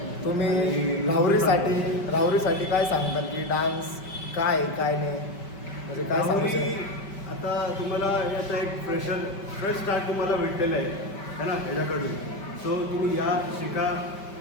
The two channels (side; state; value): right; late; 5.1 ms